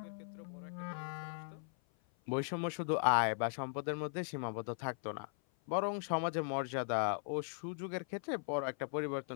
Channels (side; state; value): right; silent; 52 dB below the other